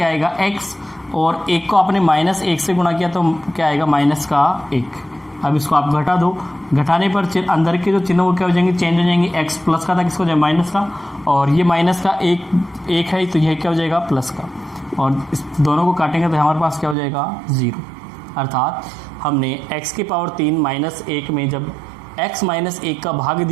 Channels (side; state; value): left; drops out; at 16.9 s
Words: आएगा? x, और 1 को आपने माइनस 1 से गुणा किया तो क्या आएगा? माइनस का 1। अब इसको आप घटा दो, घटाने पर अंदर के जो चिन्ह वो क्या हो जाएंगे? चेंज हो जाएंगे। x प्लस का था, किसको हो जाएगा? माइनस का, और ये माइनस का 1 है तो यह क्या हो जाएगा? प्लस का, और इस दोनों को काटेंगे तो हमारे पास क्या हो जाएगा? 0। अर्थात हमने x की पावर 3 माइनस 1 में जब x माइनस 1 का भाग